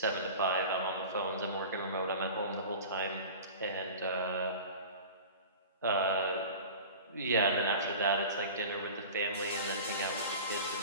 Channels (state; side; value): inverted; both; correlation -0.36